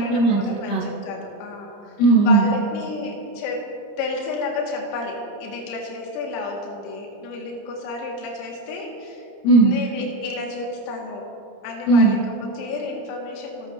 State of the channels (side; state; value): right; late; 30 ms